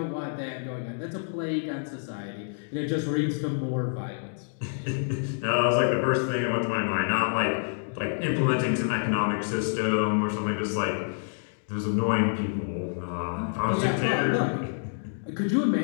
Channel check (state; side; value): silent; right; digital silence